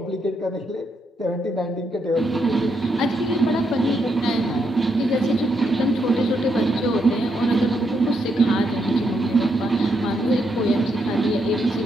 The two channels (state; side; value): normal; both; correlation 0.79